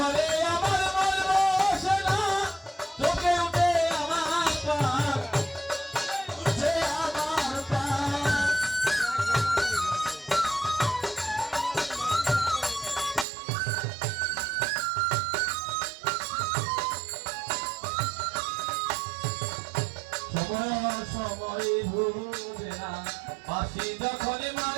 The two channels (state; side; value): drops out; left; at 13.2 s